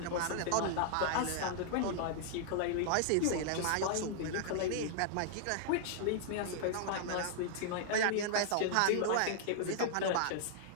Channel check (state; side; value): different; both; correlation -0.01